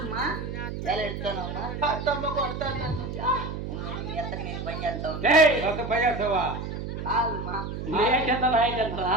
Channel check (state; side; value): noise; right; hum, 6 dB below the sound